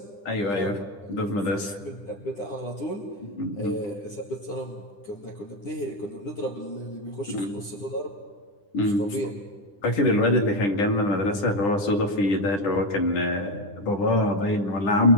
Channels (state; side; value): late; right; 10 ms